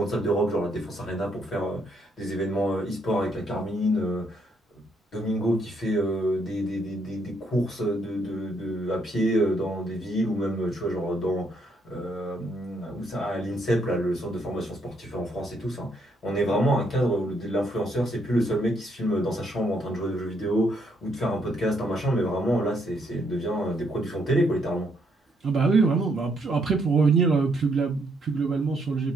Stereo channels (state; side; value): normal; both; correlation 0.73